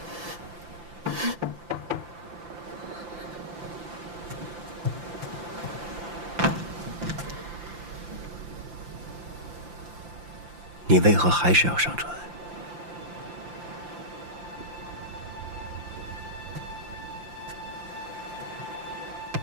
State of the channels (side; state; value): left; late; 5.8 ms